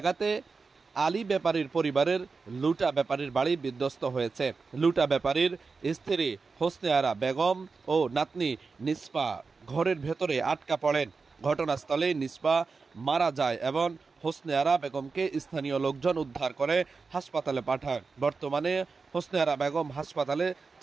আলী ব্যাপারীর পরিবারের লুটা ব্যাপারীর বাড়ি বিধ্বস্ত হয়েছে। লুটা ব্যাপারীর স্ত্রী হোসনে আরা বেগম ও নাতনি নিষ্পা ঘরের ভেতরে আটকা পড়েন। ঘটনাস্থলে নিষ্পা মারা যায় এবং হোসনে আরা বেগমকে স্থানীয় লোকজন উদ্ধার করে হাসপাতালে পাঠায়। বর্তমানে হোসনে আরা বেগম হাসপাতালে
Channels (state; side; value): quieter; left; 4.5 dB